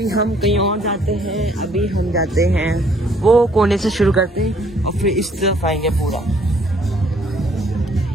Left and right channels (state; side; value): normal; both; correlation 0.63